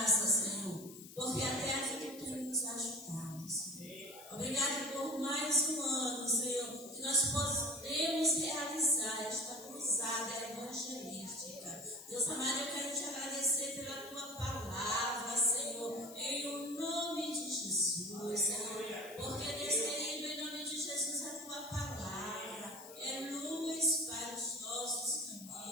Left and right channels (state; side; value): noise; left; hiss, 16 dB below the sound